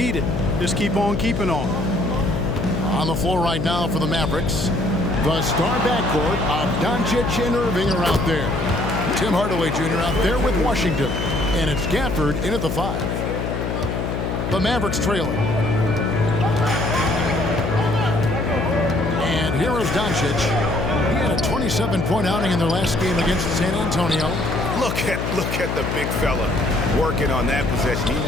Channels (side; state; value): left; noise; hum, 2 dB below the sound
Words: Just keep on keeping on. On the floor right now for the Mavericks, the star backcourt of Doncic and Irving are out there. Tim Hardaway Jr. out there with Washington. And it's Gafford in at the 5. The Mavericks trailing. And here is Doncic. He had a 27-point outing in their last game against San Antonio. Look at the big fella working on that possession. He